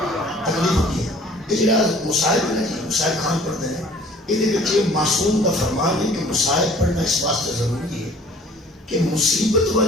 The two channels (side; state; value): both; normal; correlation 0.52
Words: یہ جڑا مصائب ہے نا جی مصائب خان پڑھتے ہیں یہ معصوم کا فرمان ہے کہ مصائب پڑھنا اس واسطے ضروری ہے کہ مصیبت